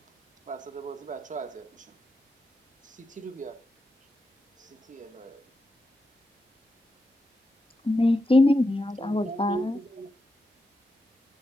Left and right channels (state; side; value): normal; both; correlation 0.87